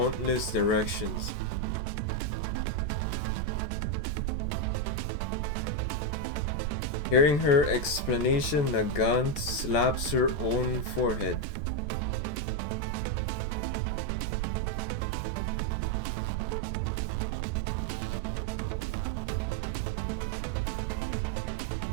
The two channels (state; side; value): late; right; 14 ms